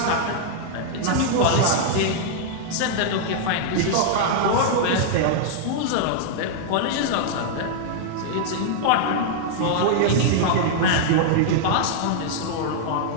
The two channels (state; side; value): different; both; correlation -0.01